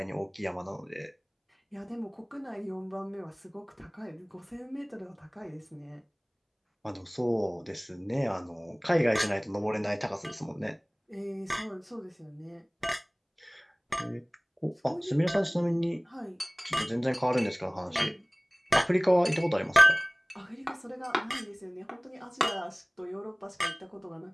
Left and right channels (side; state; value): both; identical; correlation 1.00